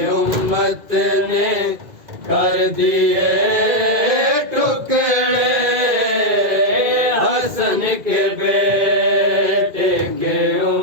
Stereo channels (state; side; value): late; left; 2.4 ms